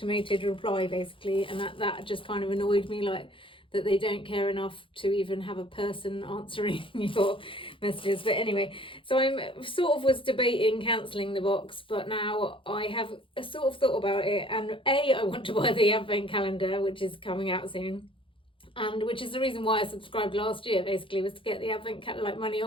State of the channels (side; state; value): right; late; 0.25 ms